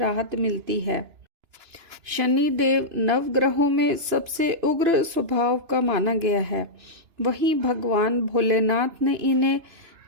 मिलती है। शनिदेव नवग्रहों में सबसे उग्र स्वभाव का माना गया है। वहीं भगवान भोलेनाथ ने इन्हें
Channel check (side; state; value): left; late; 2.9 ms